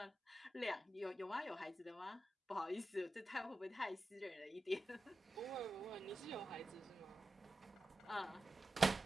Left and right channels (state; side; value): normal; both; correlation 0.92